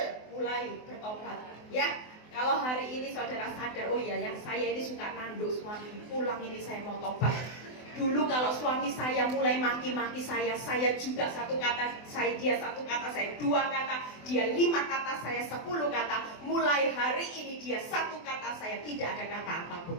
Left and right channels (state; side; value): late; right; 24 ms